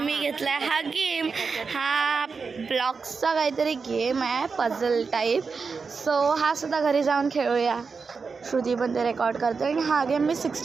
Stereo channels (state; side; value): quieter; left; 5.0 dB